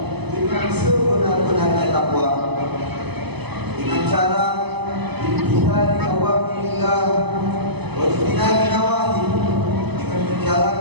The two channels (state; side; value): late; left; 0.99 ms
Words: dengan sebenar-benarnya takwa. Dengan cara imtithali awamirillah wa ijtinabi nawahi, dengan